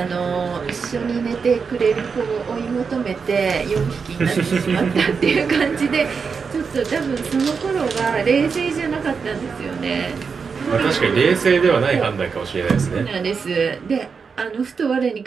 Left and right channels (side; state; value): left; quieter; 5.5 dB